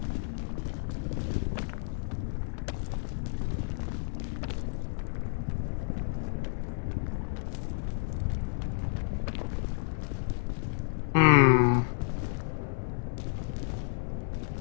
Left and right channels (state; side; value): silent; right; digital silence